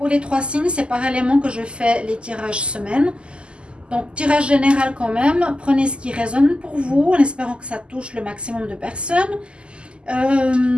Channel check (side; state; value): left; late; 0.051 ms